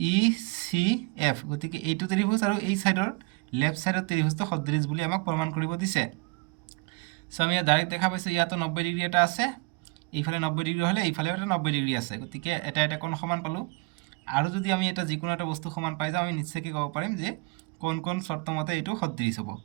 গতিকে এইটো ত্ৰিভুজ আৰু এই সাইডৰ লেফট সাইডৰ ত্ৰিভুজটো সদৃশ বুলি আমাক প্ৰমাণ কৰিব দিছে সো আমি ডাইৰেক্ট দেখা পাইছোঁ ইয়াতো 90 ডিগ্ৰী এটা আছে এইফালে 90 ডিগ্ৰী হ'লে এইফালেও এটা 90 ডিগ্ৰী আছে গতিকে এটা কোণ সমান পালোঁ আৰু যদি আমি এটা যিকোনো এটা বস্তু সমান পাই যাওঁ আমি নিশ্চয়কৈ ক'ব পাৰিম যে কোন চৰ্ত মতে এইটো সদৃশ হ'ব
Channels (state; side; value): quieter; left; 26.6 dB